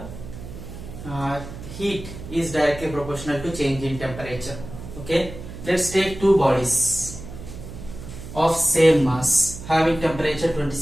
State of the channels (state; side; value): noise; right; hum, 12 dB below the sound